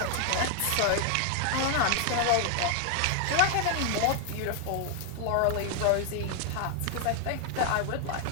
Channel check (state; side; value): different; both; correlation 0.00